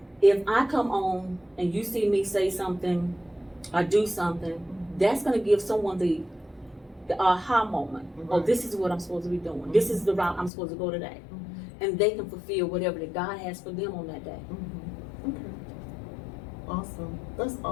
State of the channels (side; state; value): right; drops out; at 10.5 s